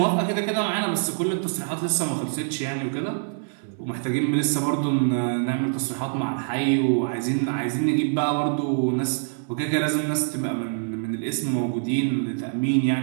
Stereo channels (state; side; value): silent; left; 62 dB below the other